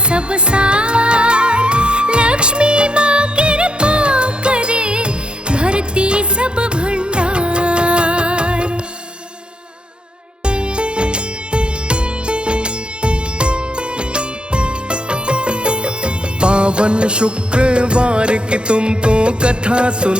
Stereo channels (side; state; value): left; late; 0.053 ms